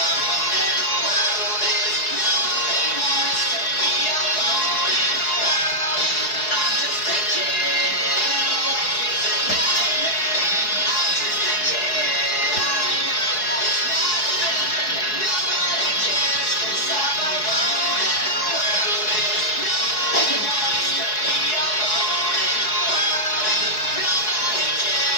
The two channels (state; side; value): late; right; 4.7 ms